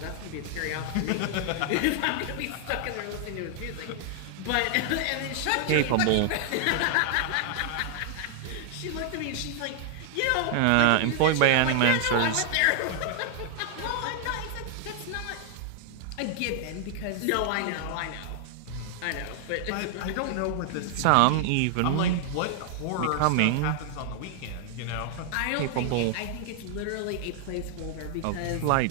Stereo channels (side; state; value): both; different; correlation 0.00